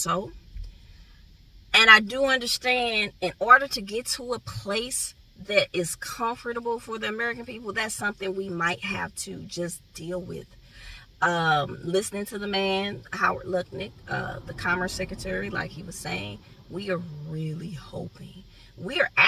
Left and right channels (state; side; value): identical; both; correlation 1.00